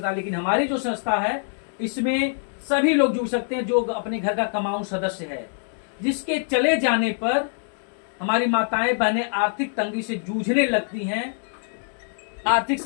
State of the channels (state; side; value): silent; right; digital silence